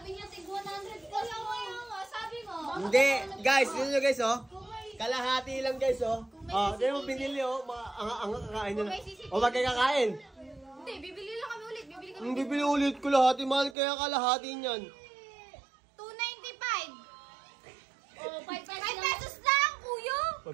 niya, tig 100 ka lang. Sabi mo. Hindi. Guys, sino nyo guys oh? Kalahati lang guys oh. Oh, di mo binili oh. Ang kakain nyo na. O wag kayo kakain. Hindi, bibili lang kami ulit. Bibili kami. Hindi bibili ulit ko lahati. Mahal kaya kalahati niyan. 295. Oh, 5 5 pesos lang, kuya.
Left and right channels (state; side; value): drops out; left; at 13.8 s